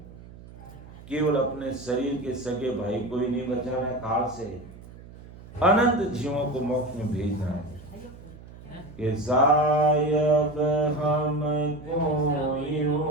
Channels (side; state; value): right; noise; hum, 18 dB below the sound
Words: केवल अपने शरीर के सगे भाई को ही नहीं बचाना है, काल से अनंत जीवों को मोक्ष में भेजना है। कि सायब हमको